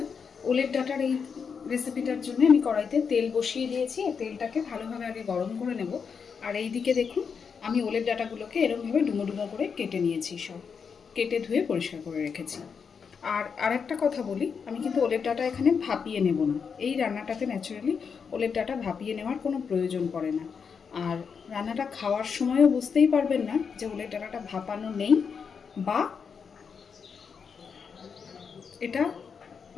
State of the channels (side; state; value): right; quieter; 6.2 dB